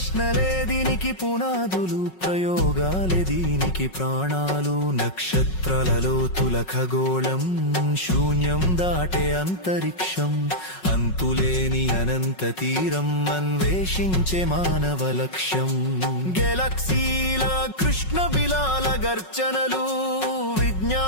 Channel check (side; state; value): right; late; 5.4 ms